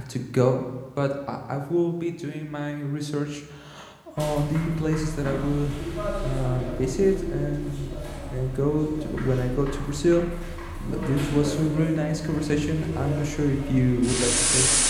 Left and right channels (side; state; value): both; identical; correlation 1.00